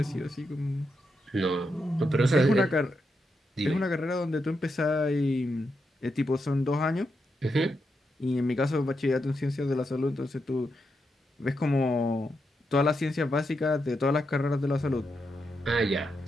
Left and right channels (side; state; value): both; normal; correlation 0.84